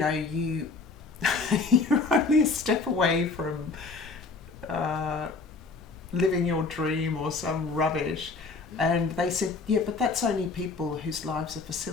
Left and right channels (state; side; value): quieter; right; 4.2 dB